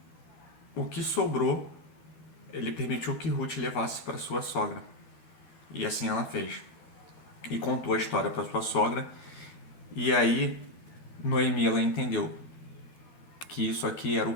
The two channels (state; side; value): late; right; 13 ms